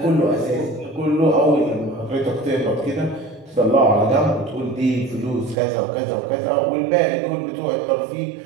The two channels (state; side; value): drops out; left; at 5.6 s